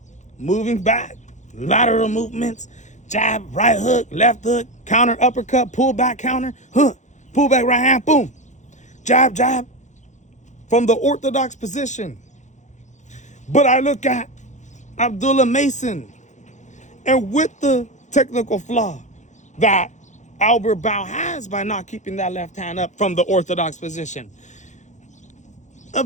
Moving back, lateral movements, jab, right hook, left hook, counter, uppercut, pull back, counter, pull back, right hand, boom. Jab, jab, from the orthodox position. But I look at Abdullah Mason, and with the technical flaw that Albert Bow has by not keeping that left hand up from the orthodox position,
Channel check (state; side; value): late; right; 0.35 ms